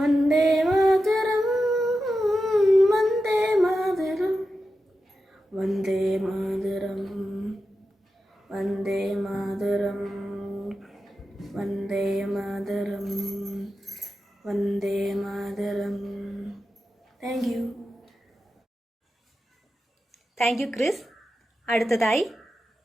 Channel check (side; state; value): both; normal; correlation 0.91